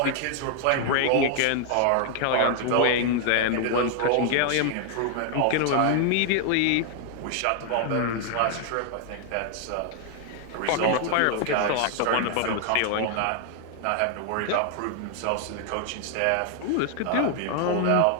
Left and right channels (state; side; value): different; both; correlation 0.00